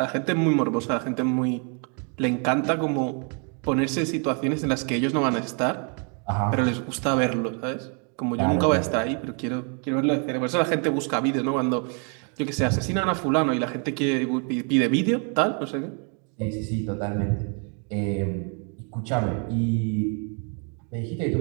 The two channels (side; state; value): left; quieter; 39.0 dB